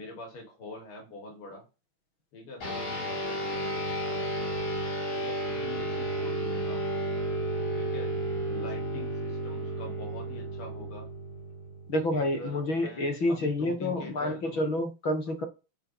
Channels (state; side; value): late; right; 6.2 ms